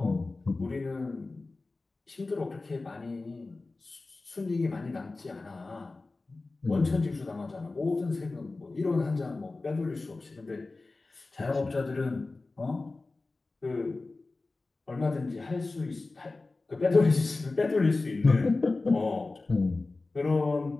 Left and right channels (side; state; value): right; quieter; 3.4 dB